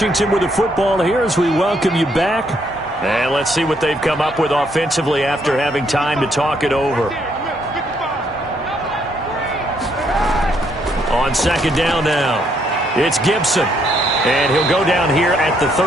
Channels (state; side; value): normal; both; correlation 0.72